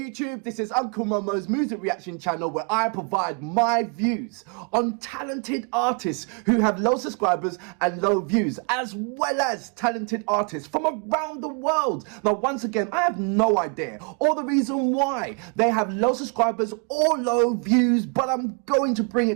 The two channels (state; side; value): quieter; left; 36.0 dB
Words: this is Uncle Momo's music reaction channel where I provide my views on talented artists who have low subscribers and low views, as well as talented artists from around the world. Now once again, I have no idea or the reason why they have low subscribers or low views, but I'm going to bring